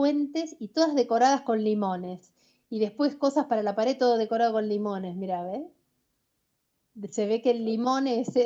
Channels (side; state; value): both; identical; correlation 1.00